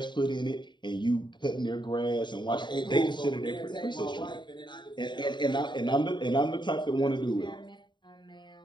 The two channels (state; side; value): late; right; 0.22 ms